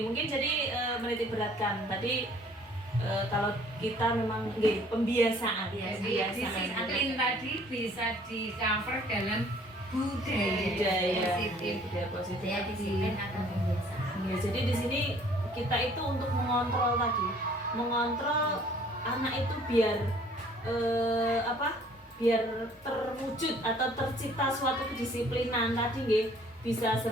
mungkin jadi menitik beratkan tadi kalau kita memang pembiasaan. Jadi disiplin tadi bisa di cover dalam budaya positif. Budaya positif. Budaya disiplin atau pembiasaan. Ya, jadi di sini kita itu untuk mengontrol tadi, mengontrol anak itu biar biar terwujud atau tercipta suatu kedisiplinan tadi nggih, bisa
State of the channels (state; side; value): normal; both; correlation 0.56